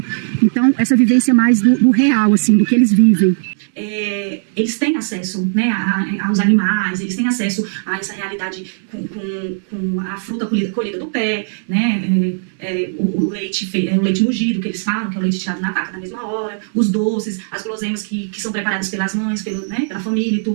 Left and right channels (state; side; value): silent; left; 68 dB below the other